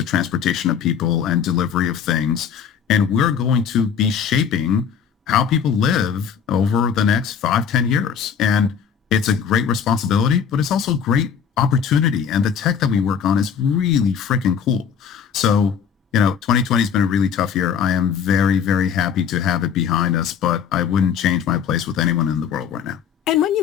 transportation of people and delivery of things. And we're going to be shaping how people live over the next 5-10 years. And it's a great responsibility, but it's also a great opportunity. And the tech that we work on is really freaking cool. So, 2020 has been a really tough year. I am very, very happy to have it behind us, but I wouldn't change my place with anyone in the world right now. And when you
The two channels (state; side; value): quieter; right; 7.5 dB